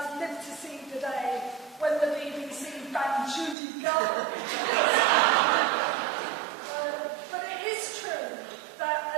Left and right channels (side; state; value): left; drops out; at 3.6 s